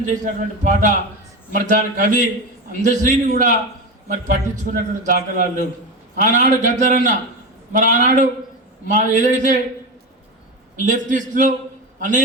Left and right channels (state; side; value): normal; both; correlation 0.20